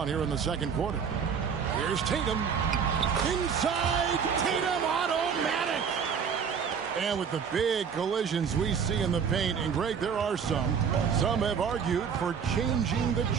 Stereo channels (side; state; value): left; quieter; 6.8 dB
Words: here in the second quarter. Here's Tatum. Inside, Tatum, automatic. And with the big collisions we see in the paint, and Greg, there are some have argued for changing the